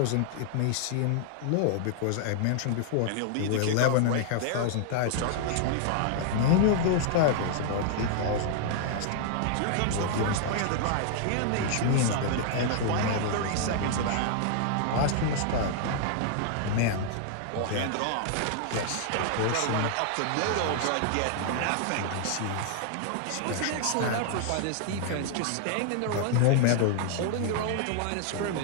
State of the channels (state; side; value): different; both; correlation 0.00